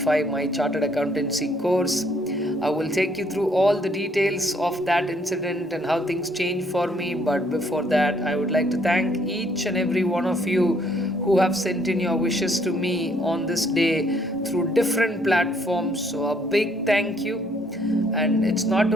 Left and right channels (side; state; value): both; normal; correlation 0.66